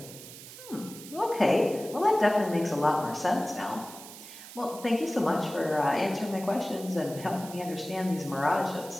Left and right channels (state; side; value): noise; right; hiss, 15 dB below the sound